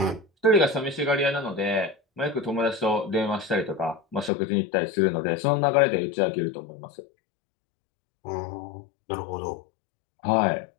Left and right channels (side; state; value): right; drops out; at 4.3 s